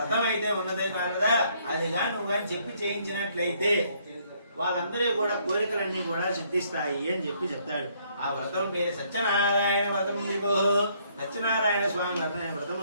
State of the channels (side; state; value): both; inverted; correlation -0.67